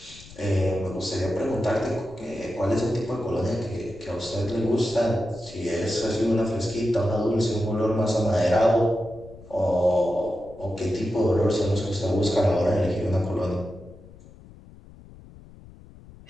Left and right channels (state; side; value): noise; left; rumble, 21 dB below the sound